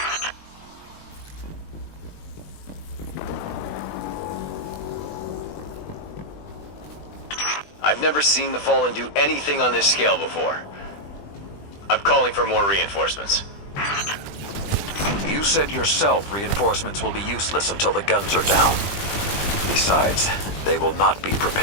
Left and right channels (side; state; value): right; late; 20 ms